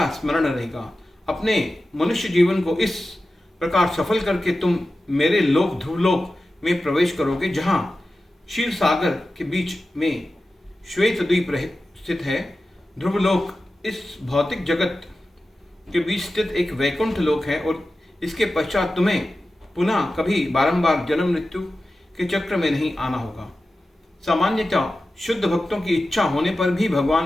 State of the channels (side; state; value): both; normal; correlation 0.94